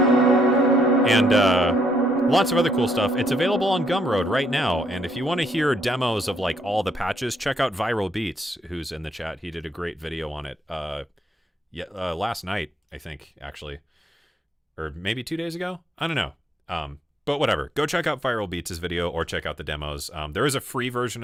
And lots of other cool stuff. It's available on Gumroad right now. And if you want to hear demos of like all the patches, check out Viral Beats, who's in the chat. He did a great video on it. Last night, I think, actually. Or maybe 2 days ago? I don't know. But whatever. Go check out Viral Beats' video or check out the demos. There is a free version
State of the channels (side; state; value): both; normal; correlation 0.73